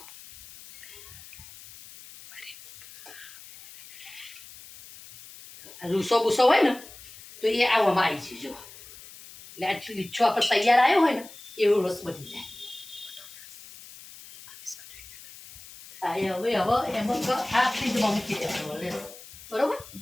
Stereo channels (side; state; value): left; noise; hiss, 18 dB below the sound